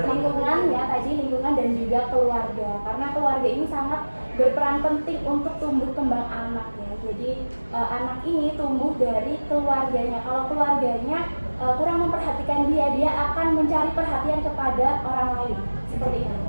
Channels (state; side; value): inverted; both; correlation -1.00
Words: lingkungan ya, tadi lingkungan dan juga keluarga. Karena keluarga ini sangat berperan penting untuk tumbuh kembang anak ya. Jadi anak ini tumbuh dari keluarganya. Kalau keluarganya kurang memperhatikan dia akan mencari perhatian kepada orang lain. Seperti itu.